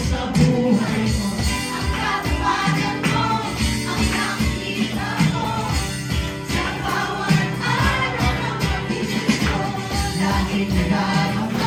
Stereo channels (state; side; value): identical; both; correlation 1.00